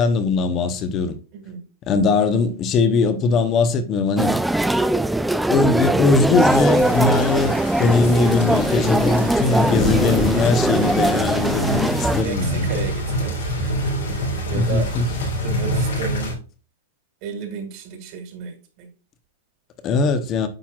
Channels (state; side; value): normal; both; correlation 0.53